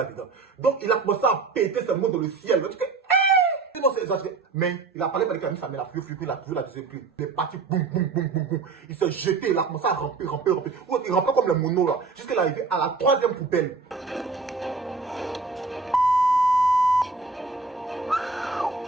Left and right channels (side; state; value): left; quieter; 4.3 dB